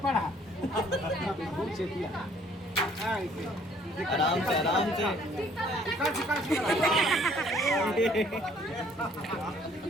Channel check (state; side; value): normal; both; correlation 0.60